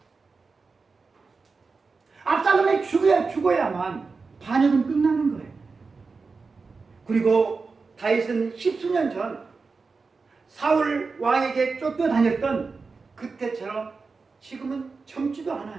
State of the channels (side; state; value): left; quieter; 4.4 dB